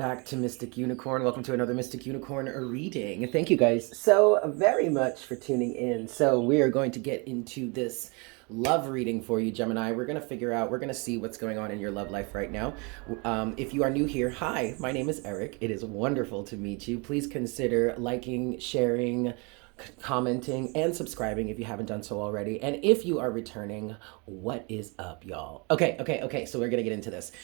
to Mystic Unicorn. Welcome to another Mystic Unicorn reading. Thank you guys so very much for tuning in. So we are going to get into this love reading for you, Gemini. We're going to see what's going on in your love life right now. If you are new here, hi, my name is Eric. It is wonderful to meet you. Please consider liking, sharing, commenting, and subscribing if you haven't done so already. And if you are returning, what is up, y'all? Okay. So we're gonna get into this.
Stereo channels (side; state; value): left; quieter; 30.9 dB